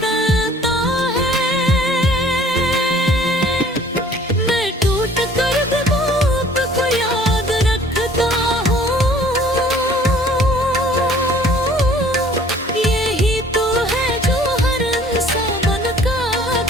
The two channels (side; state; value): both; normal; correlation 0.53